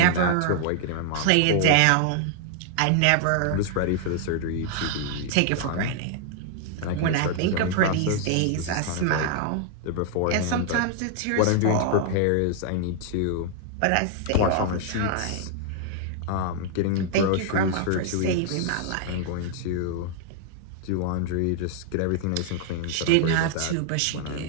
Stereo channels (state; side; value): different; both; correlation 0.00